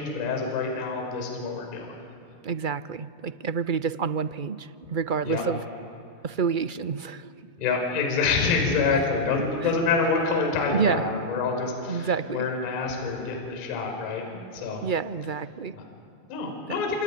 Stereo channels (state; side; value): late; left; 2.3 ms